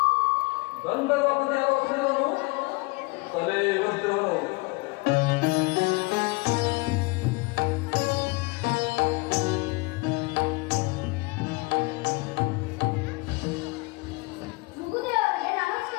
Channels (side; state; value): right; quieter; 25.7 dB